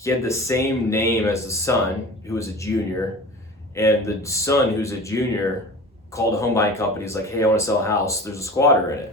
had the same name as the son, who was a junior. And the son, who's a junior, called a home buying company. He's like, hey, I want to sell a house. There's a squatter in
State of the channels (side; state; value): both; normal; correlation 0.37